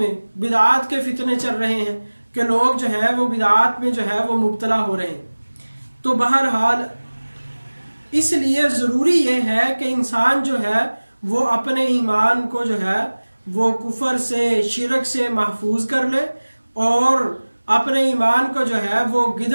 کے فتنے چل رہے ہیں کہ لوگ جو ہے وہ بدعات میں جو ہے وہ مبتلا ہو رہے ہیں۔ تو بہرحال اس لیے ضروری یہ ہے کہ انسان جو ہے وہ اپنے ایمان کو جو ہے وہ کفر سے، شرک سے محفوظ کر لے اور اپنے ایمان کو جو ہے وہ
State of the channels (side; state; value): both; inverted; correlation -1.00